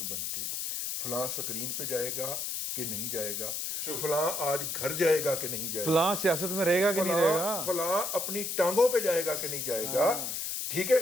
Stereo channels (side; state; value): left; noise; hiss, 3 dB below the sound